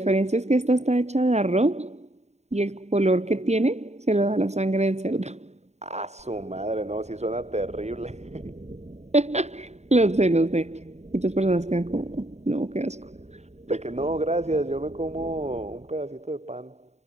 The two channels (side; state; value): left; late; 0.32 ms